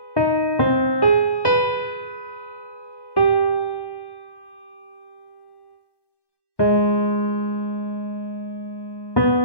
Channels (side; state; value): right; late; 1.1 ms